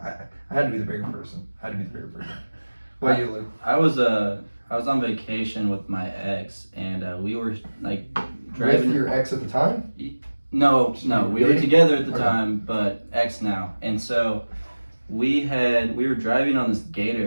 had to be the bigger person. What about you, Luke? I was on vacation with my ex, and we were like driving. With your ex at the time? No, we were together at the time, but ex now. And so we were driving on this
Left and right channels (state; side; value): inverted; both; correlation -1.00